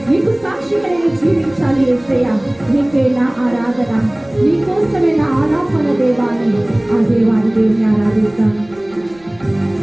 నీకు సాక్షిగా నేను జీవించాలి యేసయ్యా. నీకే నా ఆరాధన, నీకోసమే నా ఆలాపన దేవాని ఆ దేవాని దేవుని ఆరాధిస్తాను.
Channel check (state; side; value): noise; right; rumble, 28 dB below the sound